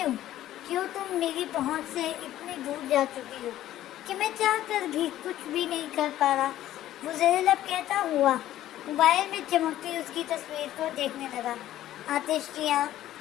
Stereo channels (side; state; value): right; quieter; 13.3 dB